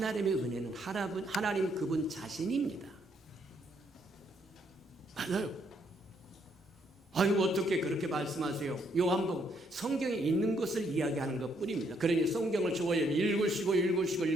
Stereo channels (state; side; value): normal; both; correlation 0.72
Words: 은혜는 하나님 그분 자신입니다. 맞아요. 아유, 어떻게 그렇게 말씀하세요? 요한복음 성경에 있는 것을 이야기하는 것뿐입니다. 그러니 성경을 좋아요.